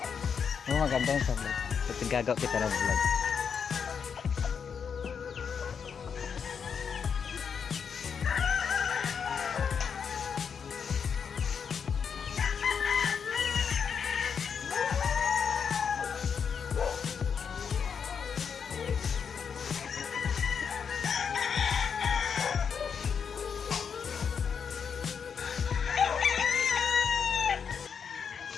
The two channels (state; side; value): quieter; right; 6.7 dB